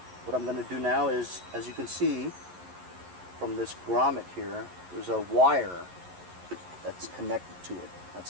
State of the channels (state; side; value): late; left; 11 ms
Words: What I'm going to do now is, as you can see from this grommet here, there's a wire that's connected to it. That's